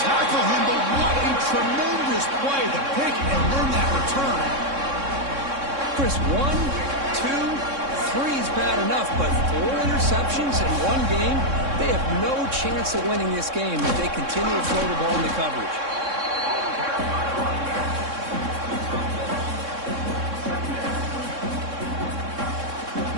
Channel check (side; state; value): left; late; 3.6 ms